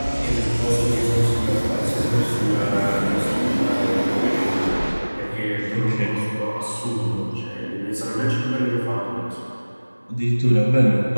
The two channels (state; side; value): inverted; both; correlation -1.00